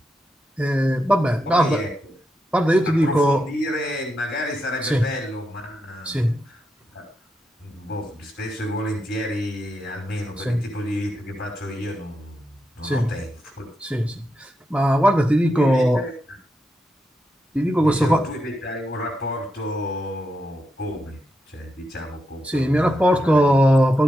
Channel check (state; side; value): normal; both; correlation 0.85